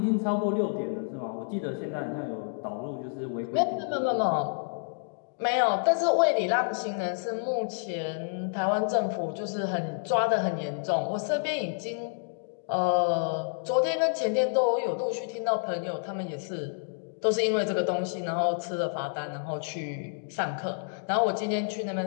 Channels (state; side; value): silent; right; digital silence